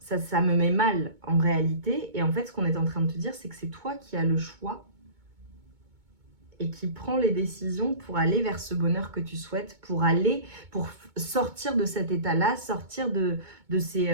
me met mal en réalité. Et en fait, ce qu'on est en train de te dire, c'est que c'est toi qui as le choix et qui prend les décisions pour aller vers ce bonheur que tu souhaites, pour sortir de cet état-là, sortir de ces,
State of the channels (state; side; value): late; left; 2.2 ms